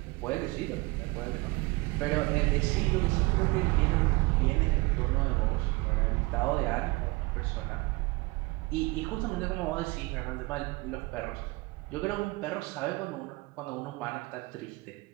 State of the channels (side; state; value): left; quieter; 23.8 dB